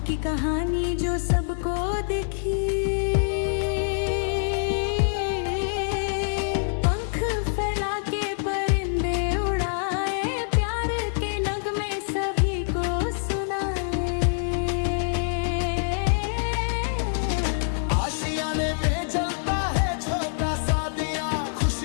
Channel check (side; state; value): right; silent; digital silence